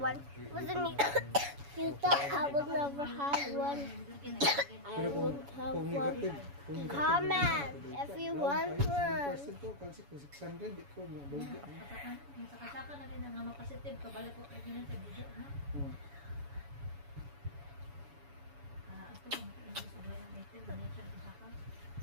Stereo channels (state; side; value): late; left; 7.1 ms